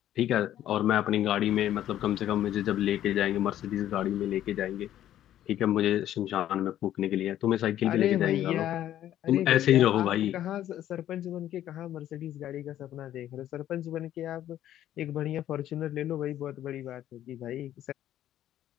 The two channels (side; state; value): right; quieter; 12.1 dB